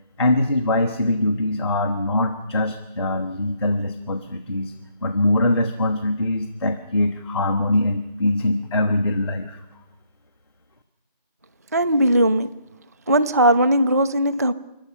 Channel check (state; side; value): inverted; both; correlation -0.69